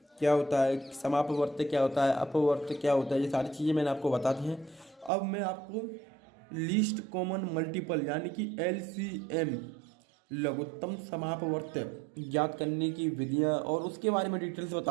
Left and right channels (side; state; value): left; drops out; at 5.1 s